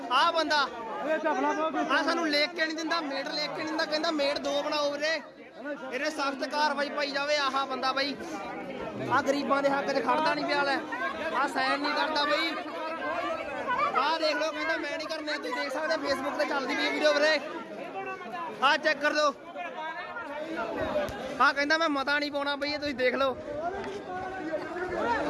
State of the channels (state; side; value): identical; both; correlation 1.00